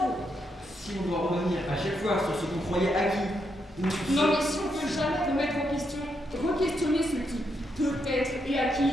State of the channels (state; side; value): normal; both; correlation 0.80